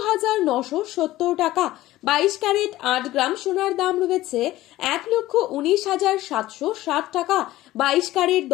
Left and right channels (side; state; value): right; quieter; 16.1 dB